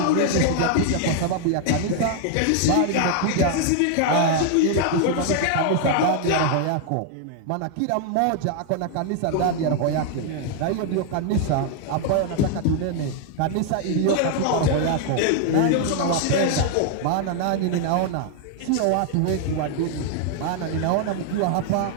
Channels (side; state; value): both; different; correlation 0.00